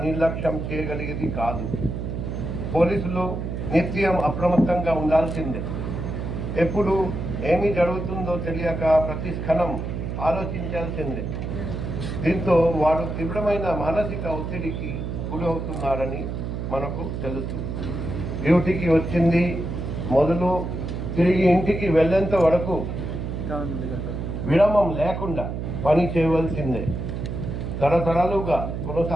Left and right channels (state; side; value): noise; right; hum, 4 dB below the sound